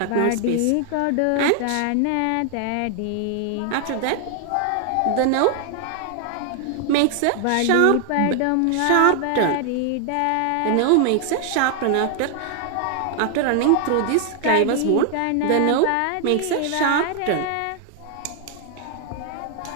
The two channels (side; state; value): both; different; correlation 0.00